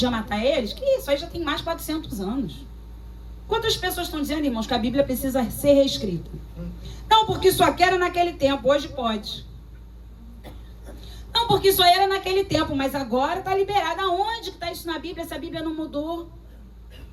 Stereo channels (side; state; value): both; identical; correlation 1.00